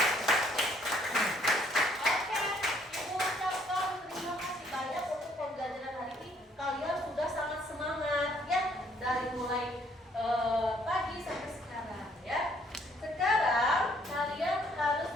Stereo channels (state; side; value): normal; both; correlation 0.65